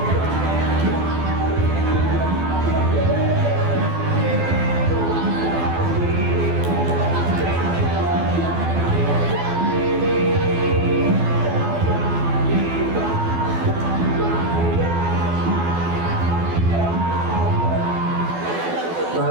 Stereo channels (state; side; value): late; left; 12 ms